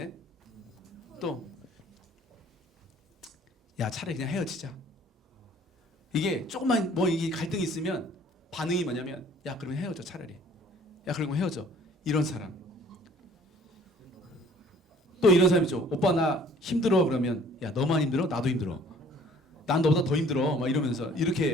또, 야, 차라리 그냥 헤어지자. 이게 조금만 이게 갈등이 있으면 반응이 뭐냐면, 야, 그러면 헤어져, 차라리. 야, 그러면 헤어져. 이런 사람. 또 이런 사람 있죠. 오빠 나 힘들어 그러면, 야, 너만 힘들어? 나도 힘들어. 난 너보다 더 힘들어. 막 이러면서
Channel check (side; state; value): both; normal; correlation 0.55